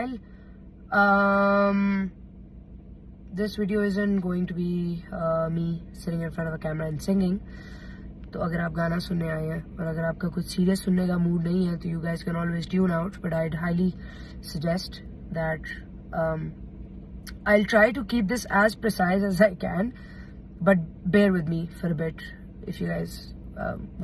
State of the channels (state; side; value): identical; both; correlation 1.00